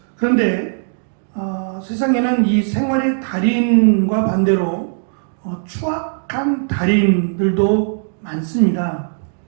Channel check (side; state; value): left; silent; digital silence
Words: 그런데 세상에는 이 생활의 달인과 반대로 추악한 달인들도 많습니다.